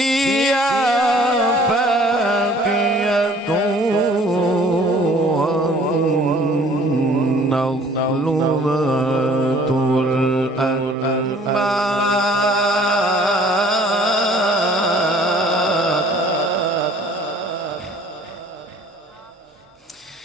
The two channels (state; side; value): normal; both; correlation 0.54